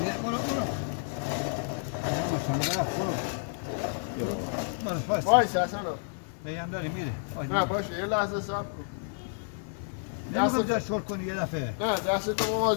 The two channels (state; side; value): silent; right; 58 dB below the other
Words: برو وایس اصلا هم داری میره نه باشه یه لحظه صبر کن نمیخواد شل کنی یه دفعه نه دستتو